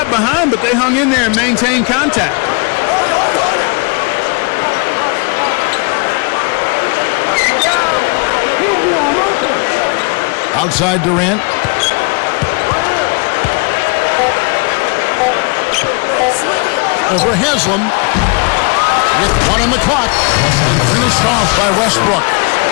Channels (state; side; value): quieter; right; 33.2 dB